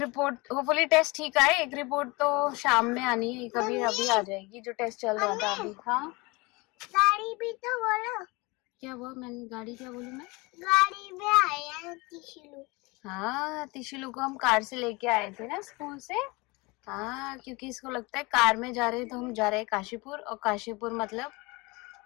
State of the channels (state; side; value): quieter; right; 25.3 dB